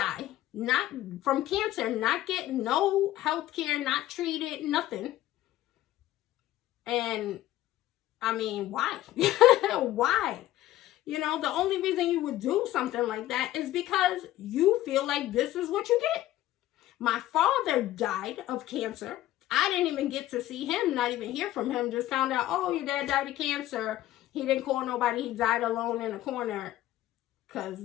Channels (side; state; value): right; quieter; 14.6 dB